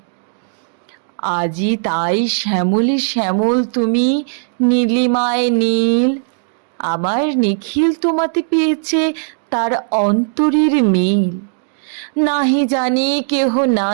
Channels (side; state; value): left; silent; digital silence